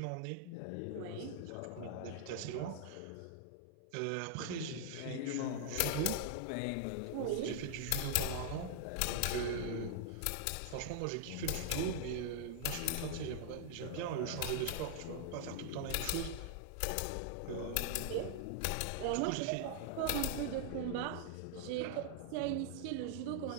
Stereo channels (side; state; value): both; different; correlation 0.00